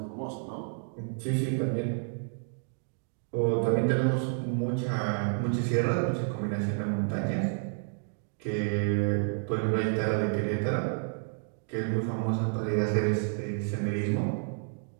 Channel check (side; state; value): left; silent; 58 dB below the other